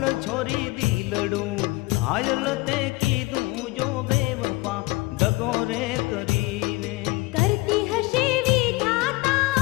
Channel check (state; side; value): quieter; right; 22.1 dB